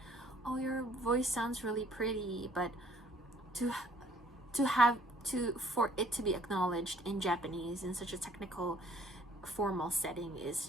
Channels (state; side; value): normal; both; correlation 0.60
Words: oh, your voice sounds really pretty, but for it to be acknowledged in Japanese in such a technical, formal setting is